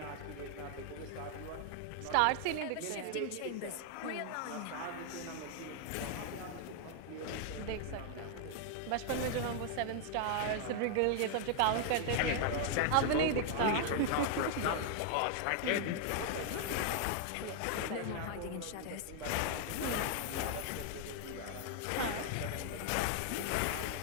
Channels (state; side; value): different; both; correlation 0.00